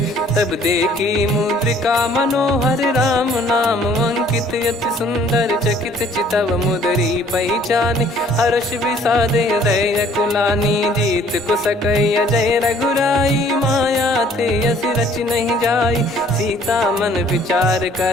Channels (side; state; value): both; normal; correlation 0.58